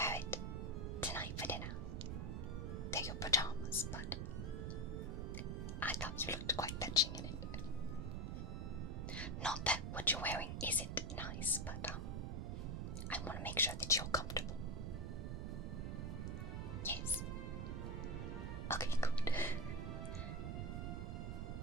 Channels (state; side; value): noise; right; rumble, 2 dB below the sound